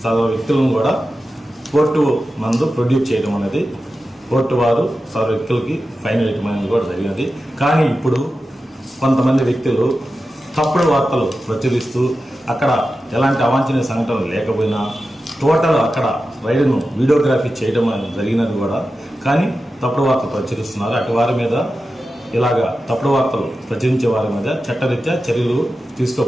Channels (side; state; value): both; normal; correlation 0.92